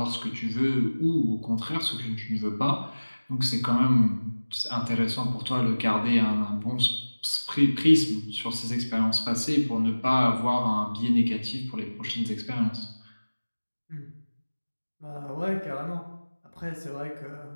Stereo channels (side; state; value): both; inverted; correlation -1.00